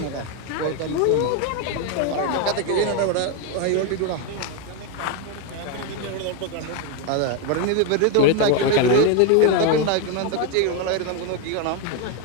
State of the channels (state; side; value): different; both; correlation 0.02